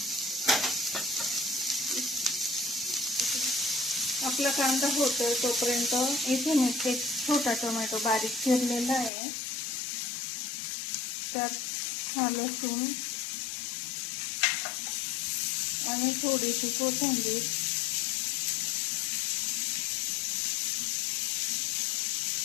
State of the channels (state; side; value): drops out; right; at 9.1 s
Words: आपला कांदा होतोय तोपर्यंत इथे मी एक छोटा टोमॅटो बारीक चिरलेला आहे, त्यात हा लसूण आणि थोडीशी कोथिंबीर,